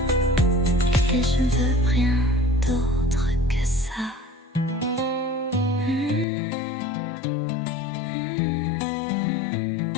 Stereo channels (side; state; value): right; drops out; at 6.2 s